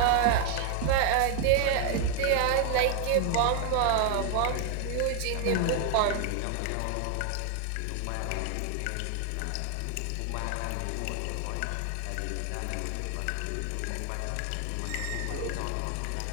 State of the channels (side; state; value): both; different; correlation 0.00